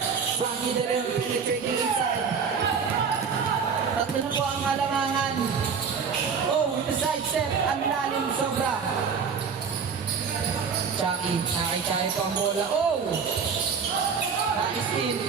Frankie De Leon penetrating inside. Tatlo na po ang alangangan. Oh, with the side step. Ang lalim sobra. Chucky, nakakitay po ang bola. Oh! Nais-steal.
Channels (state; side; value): quieter; left; 6.1 dB